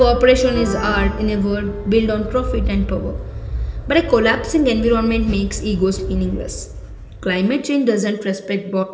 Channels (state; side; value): identical; both; correlation 1.00